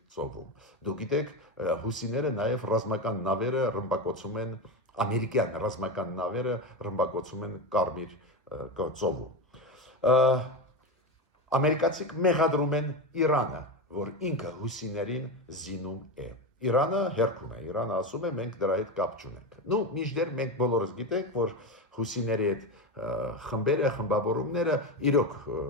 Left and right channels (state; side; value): normal; both; correlation 0.18